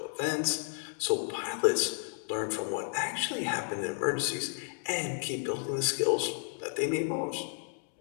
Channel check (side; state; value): right; silent; digital silence